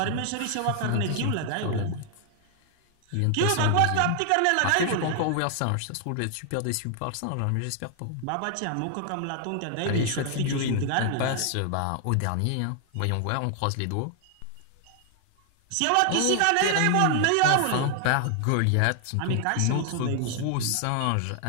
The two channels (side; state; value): both; different; correlation 0.00